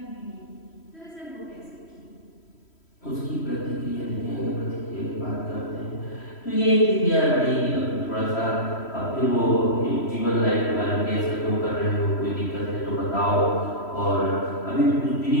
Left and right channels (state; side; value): late; right; 3.1 ms